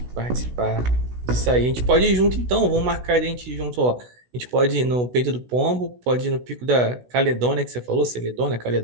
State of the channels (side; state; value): left; late; 16 ms